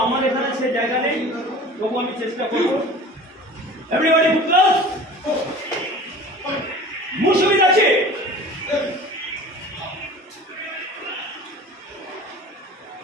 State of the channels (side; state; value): both; normal; correlation 0.41